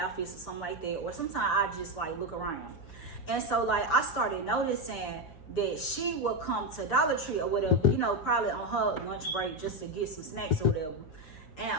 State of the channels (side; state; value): right; late; 6.7 ms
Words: or something like that. Or sometimes I just like look around. And so like I started noticing that she would come to Dollar Tree or whatever, you know, probably on her lunch break, just to get some snacks or whatever.